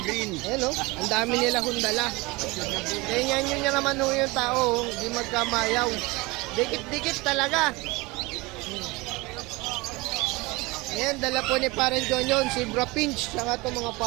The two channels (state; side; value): quieter; left; 23.7 dB